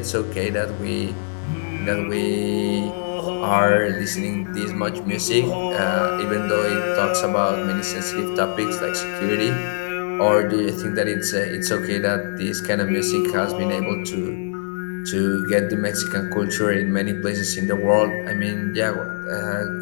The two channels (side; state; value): right; silent; 64 dB below the other